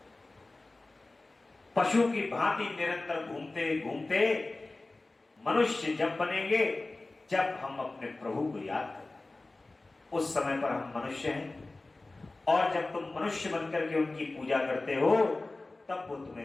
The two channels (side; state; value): right; quieter; 3.1 dB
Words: पशु की भांति निरंतर घूमते घूमते मनुष्य जब बनेंगे, जब हम अपने प्रभु को याद करें, उस समय पर हम मनुष्य हैं। और जब तुम मनुष्य बनकर के उनकी पूजा करते हो, तब वो